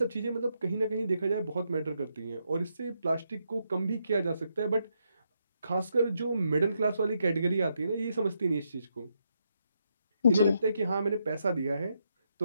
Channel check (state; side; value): inverted; both; correlation -0.80